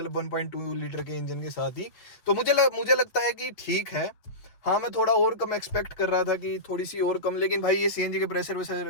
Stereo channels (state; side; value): late; right; 8.4 ms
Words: 1.2 लीटर के इंजन के साथ ही। तो मुझे लगता है कि ठीक है। हाँ मैं थोड़ा और कम एक्सपेक्ट कर रहा था कि थोड़ी सी और कम, लेकिन भाई ये सीएनजी के प्रेशर